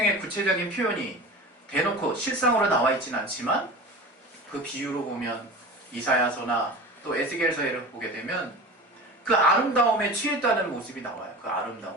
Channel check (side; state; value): both; normal; correlation 0.34